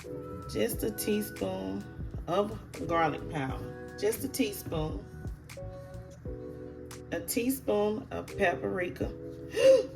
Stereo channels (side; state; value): both; identical; correlation 1.00